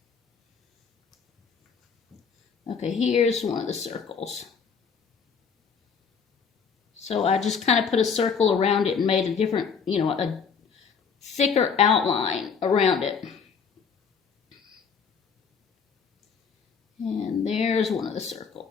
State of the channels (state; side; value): quieter; right; 6.1 dB